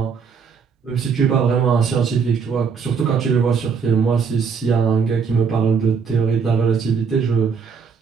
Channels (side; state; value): left; quieter; 6.0 dB